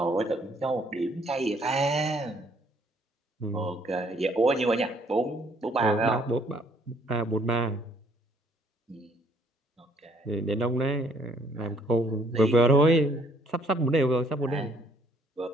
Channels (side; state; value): both; normal; correlation 0.64